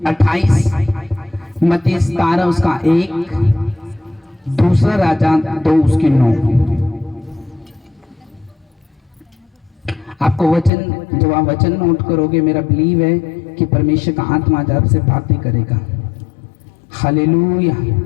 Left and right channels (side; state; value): right; drops out; at 10.7 s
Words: 28, मत्ती 17 उसका 1, दूसरा राजा 2 उसकी 9। आपको वचन, जब आप वचन नोट करोगे, मेरा बिलीव है कि परमेश्वर का आत्मा आज आपसे बातें करेगा। Hallelujah,